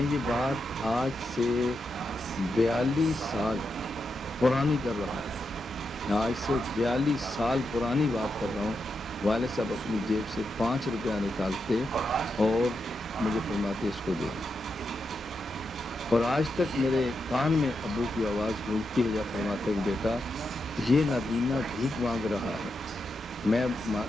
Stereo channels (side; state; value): both; normal; correlation 0.85